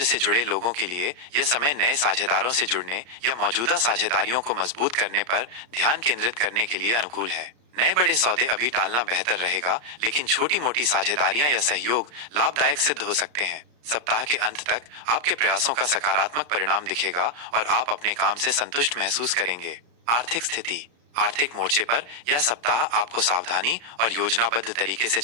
से जुड़े लोगों के लिए यह समय नए साझेदारों से जुड़ने या मौजूदा साझेदारियों को मजबूत करने पर ध्यान केंद्रित करने के लिए अनुकूल है। नए बड़े सौदे अभी टालना बेहतर रहेगा, लेकिन छोटी मोटी साझेदारियां या सहयोग लाभदायक सिद्ध हो सकते हैं। सप्ताह के अंत तक आपके प्रयासों का सकारात्मक परिणाम दिखेगा और आप अपने काम से संतुष्ट महसूस करेंगे। आर्थिक स्थिति। आर्थिक मोर्चे पर यह सप्ताह आपको सावधानी और योजनाबद्ध तरीके से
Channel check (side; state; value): left; late; 34 ms